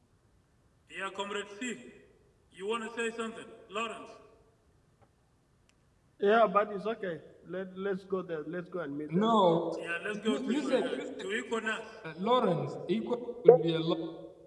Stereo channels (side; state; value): both; identical; correlation 1.00